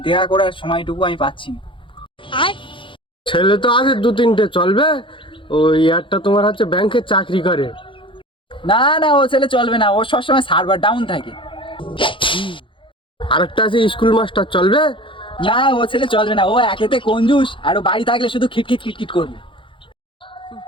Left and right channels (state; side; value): late; right; 0.25 ms